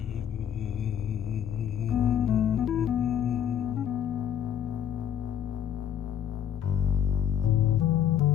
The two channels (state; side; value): quieter; right; 9.4 dB